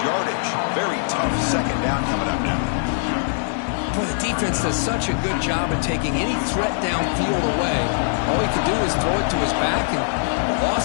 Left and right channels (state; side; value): silent; right; digital silence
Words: yardage. Very tough second down coming up now. Boy, the defense does such a good job of taking any threat downfield away. All he could do is throw it to his back, and a